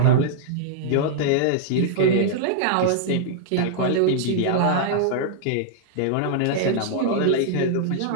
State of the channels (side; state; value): both; different; correlation -0.01